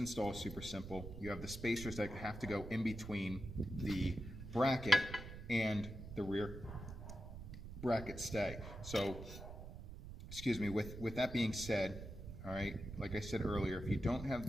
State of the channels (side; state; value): right; noise; rumble, 10 dB below the sound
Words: is super simple. You have the spacers that have to go in between the bracket and the rear bracket stay. So, excuse me, with that being said, all right, like I said earlier, if you don't have